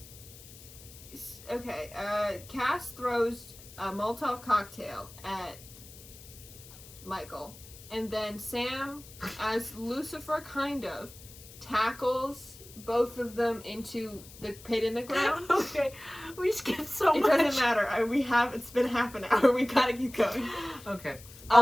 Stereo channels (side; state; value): left; noise; hiss, 19 dB below the sound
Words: Cass throws a Molotov cocktail at Michael. And then Sam, as Lucifer kind of, tackles both of them into the pit in the ground. Okay, we skipped so It much. doesn't matter. It's been half an hour. We gotta keep going. Okay.